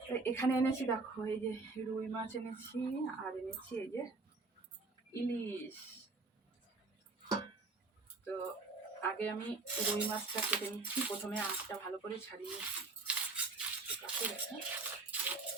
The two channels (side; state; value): left; quieter; 3.8 dB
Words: এখানে এনেছি, দেখো এই যে রুই মাছ এনেছি, আর এনেছি এই যে ইলিশ। তো আগে আমি রুই মাছটা কেটে নিচ্ছি। প্রথমে আঁশটা ভালো করে ছাড়িয়ে নিচ্ছি।